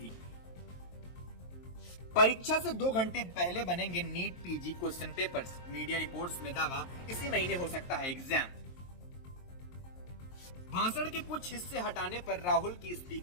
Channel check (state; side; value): late; right; 23 ms